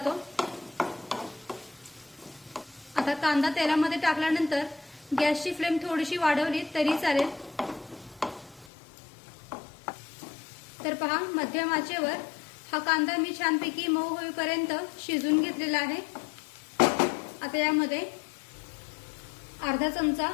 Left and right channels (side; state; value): right; drops out; at 8.7 s